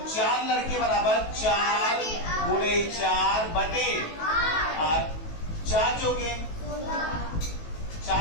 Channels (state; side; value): late; right; 18 ms